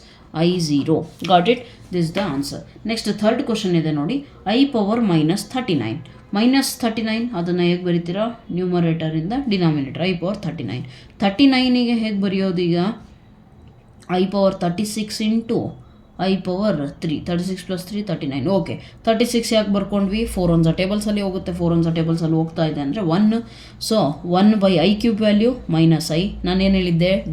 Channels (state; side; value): identical; both; correlation 1.00